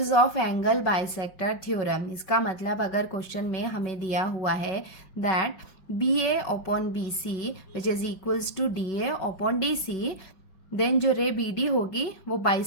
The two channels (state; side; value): late; right; 5.3 ms